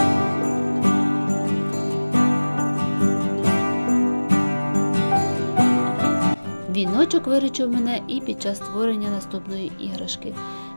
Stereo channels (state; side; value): inverted; both; correlation -1.00